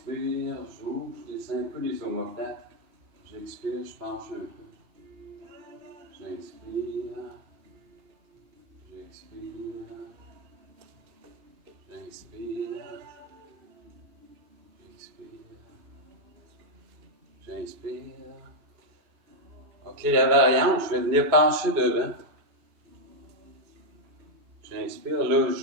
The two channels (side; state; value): right; late; 1.2 ms